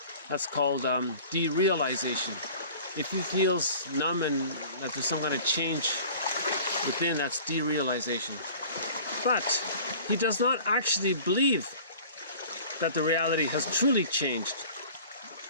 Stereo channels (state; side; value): inverted; both; correlation -0.44